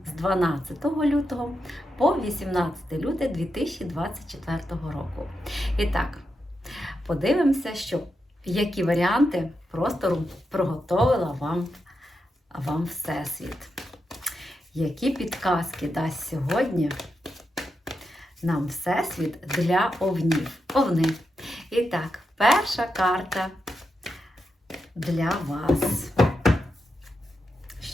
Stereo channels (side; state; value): both; normal; correlation 0.86